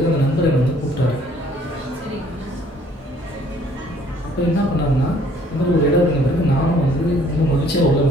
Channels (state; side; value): normal; both; correlation 0.59